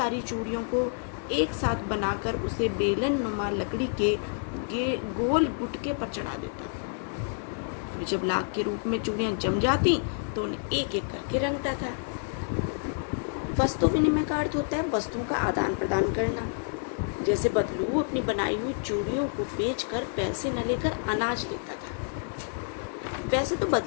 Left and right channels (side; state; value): right; silent; 59 dB below the other